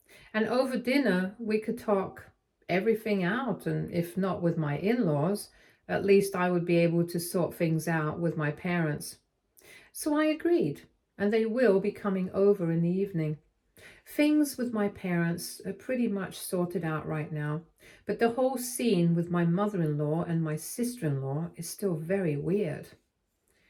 And over dinner, we could talk everything out, and if not with my in-laws, at least I would be able to sort things out with my parents. So I agreed, and they will be coming over in the evening. Things with my parents are pretty much sorted out right now, but the whole scene with my mother-in-law and my sister-in-law is still very weird.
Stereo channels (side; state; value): both; identical; correlation 1.00